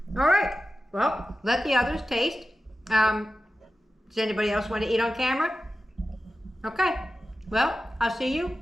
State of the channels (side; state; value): both; normal; correlation 0.94